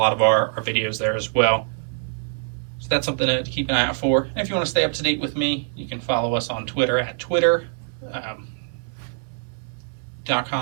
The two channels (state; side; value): silent; left; digital silence